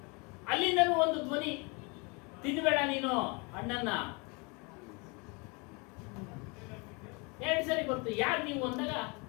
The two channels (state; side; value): quieter; right; 30.2 dB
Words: ಅಲ್ಲಿಂದನೂ ಒಂದು ಧ್ವನಿ, ತಿನ್ಬೇಡ ನೀನು ಹಣ್ಣನ್ನ. 2 ಸರಿ ಬರ್ತು. ಯಾರು ನೀವು ಅಂದಾಗ